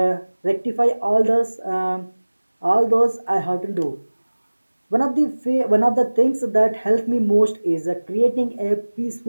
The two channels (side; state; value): both; inverted; correlation -1.00